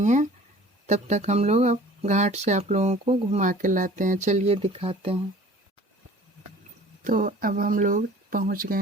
हैं। तब तक हम लोग अब घाट से आप लोगों को घुमा के लाते हैं। चलिए दिखाते हैं। तो अब हम लोग पहुंच गए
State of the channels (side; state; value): both; normal; correlation 0.47